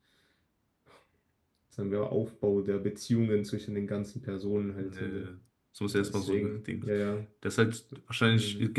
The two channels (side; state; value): both; identical; correlation 1.00